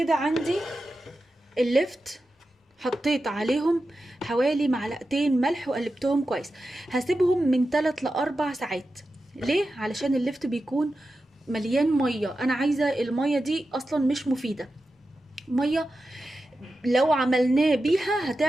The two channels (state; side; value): normal; both; correlation 0.91